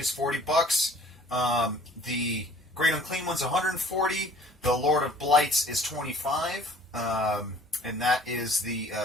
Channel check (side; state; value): both; normal; correlation 0.52